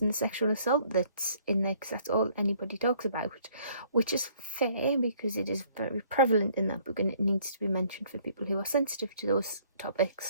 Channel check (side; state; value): both; inverted; correlation -0.61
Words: and the sexual assault that's in there, because that's all anybody talks about, which is fair because it is very prevalent in that book and it needs to be mentioned for people who are sensitive to those